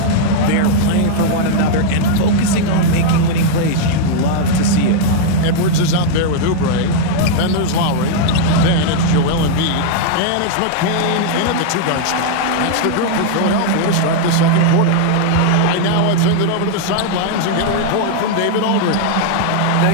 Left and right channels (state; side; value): different; both; correlation -0.01